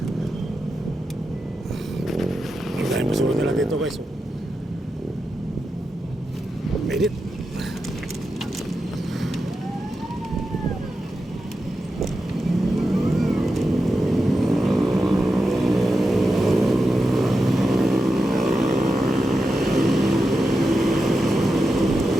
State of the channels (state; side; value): normal; both; correlation 0.89